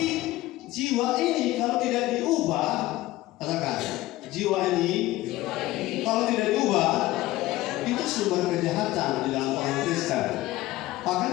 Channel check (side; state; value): right; quieter; 17.3 dB